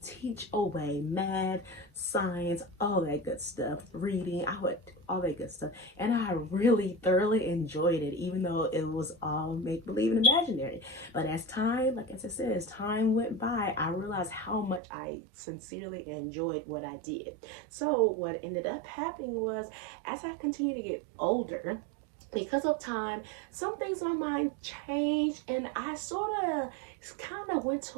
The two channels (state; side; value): drops out; left; at 14.8 s